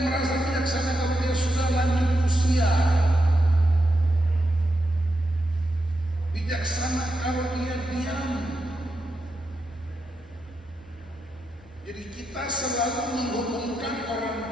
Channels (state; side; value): normal; both; correlation 0.86